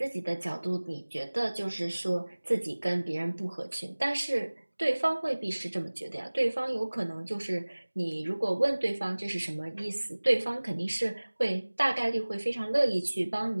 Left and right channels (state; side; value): inverted; both; correlation -1.00